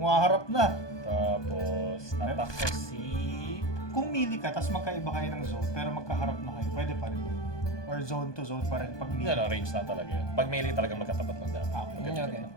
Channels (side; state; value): right; late; 1.2 ms